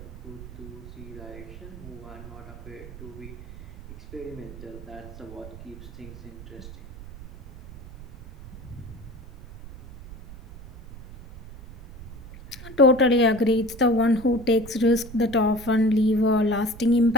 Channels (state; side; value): noise; right; rumble, 15 dB below the sound